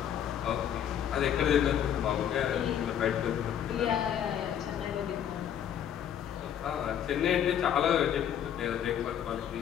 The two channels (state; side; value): quieter; right; 9.6 dB